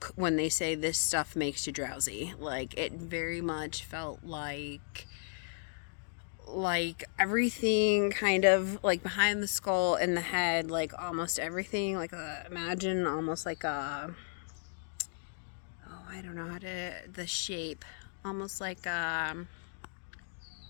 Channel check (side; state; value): right; silent; digital silence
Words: when they say this stuff makes you drowsy. Like, it very much felt like everything kind of like behind the skull in the head, like almost everything, like imagine almost like a, oh, I don't know how to, the shape, almost like a